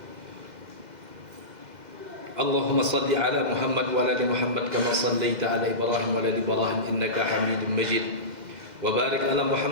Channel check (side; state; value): left; late; 2.0 ms